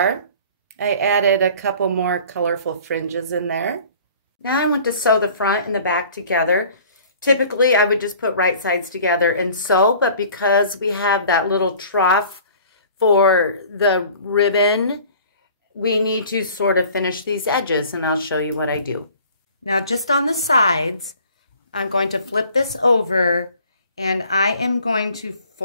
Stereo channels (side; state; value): both; inverted; correlation -0.49